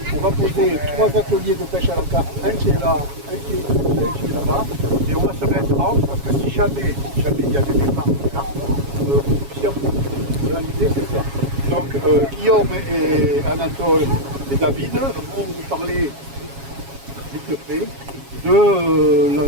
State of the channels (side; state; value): left; late; 7.3 ms